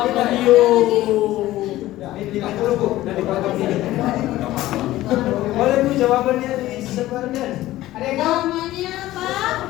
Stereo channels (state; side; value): quieter; right; 15.8 dB